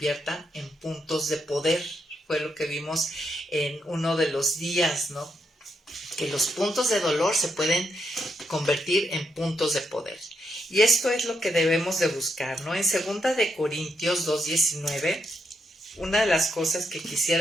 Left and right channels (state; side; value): normal; both; correlation 0.80